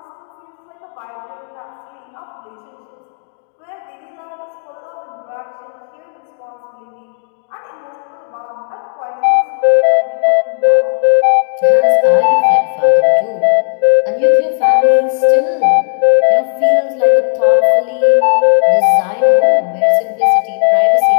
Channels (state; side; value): silent; right; digital silence